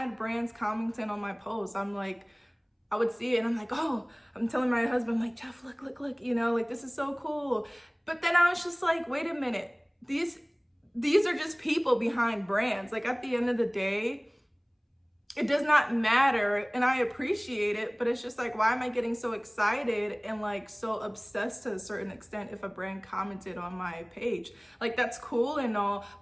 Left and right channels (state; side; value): identical; both; correlation 1.00